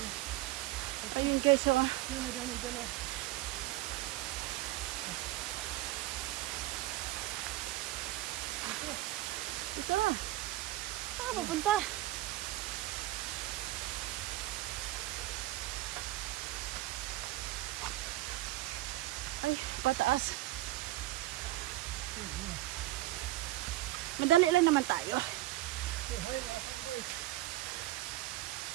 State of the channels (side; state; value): left; quieter; 16.7 dB